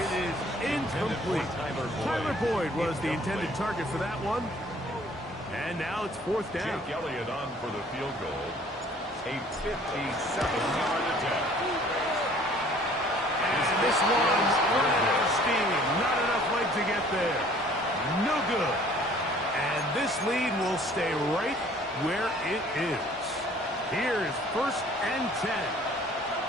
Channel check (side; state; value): both; normal; correlation 0.55